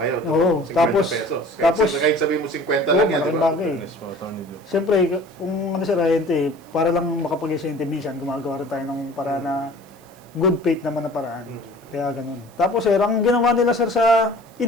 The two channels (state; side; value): noise; right; hiss, 29 dB below the sound